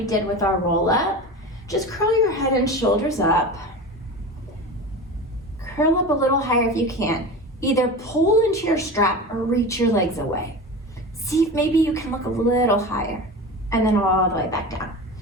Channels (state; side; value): normal; both; correlation 0.29